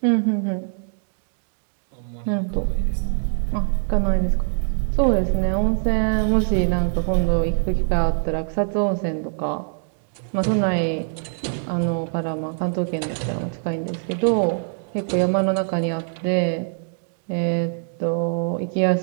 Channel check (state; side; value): silent; left; digital silence